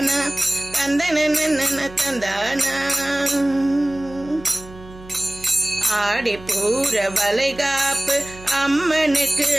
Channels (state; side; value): noise; right; hum, 19 dB below the sound